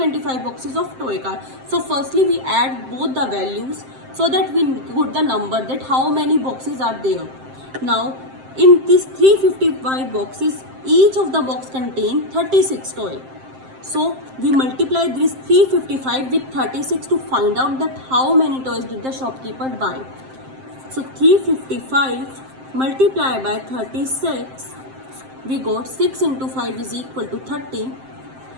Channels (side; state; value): left; late; 7.6 ms